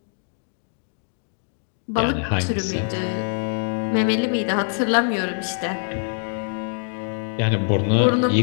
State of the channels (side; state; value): right; silent; digital silence